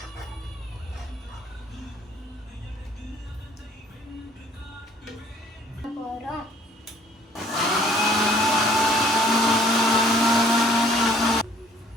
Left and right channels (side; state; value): both; normal; correlation 0.57